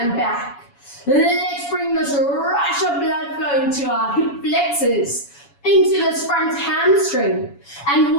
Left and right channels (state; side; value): late; right; 7.1 ms